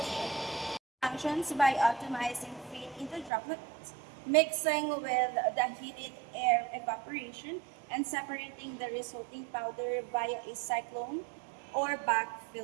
Functions by optimizing feed into droplets, mixing with the heated air evaporation, and separating the resulting powder via a cyclone or back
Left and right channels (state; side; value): drops out; left; at 3.3 s